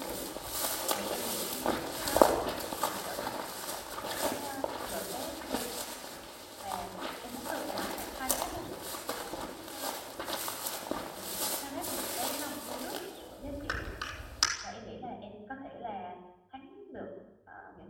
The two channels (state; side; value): identical; both; correlation 1.00